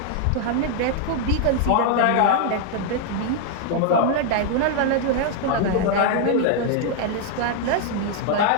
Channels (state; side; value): different; both; correlation 0.00